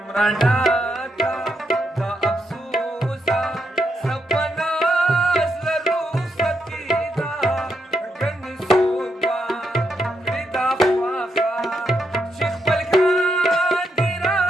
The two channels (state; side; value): normal; both; correlation 0.81